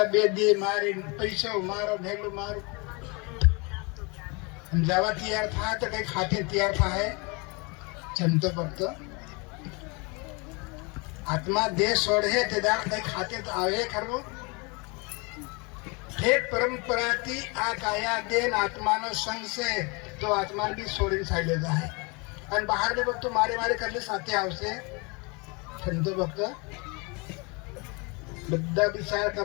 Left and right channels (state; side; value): quieter; right; 29.6 dB